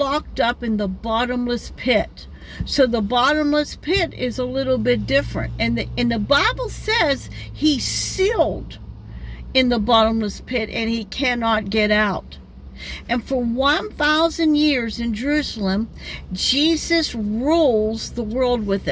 up in the bottomless pit. So the bottomless pit is a little bit different. And the Bible says he's sealed in the bottomless pit and he cannot get out. And for 1,000 years in Jerusalem, Jesus rules the world with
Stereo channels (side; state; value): both; identical; correlation 1.00